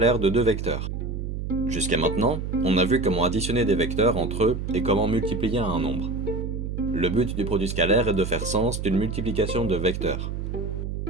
de deux vecteurs. Jusqu'à maintenant, on a vu comment additionner des vecteurs entre eux et comment multiplier un nombre. Le but du produit scalaire est de faire sens d'une multiplication de vecteurs.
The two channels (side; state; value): right; noise; hum, 4 dB below the sound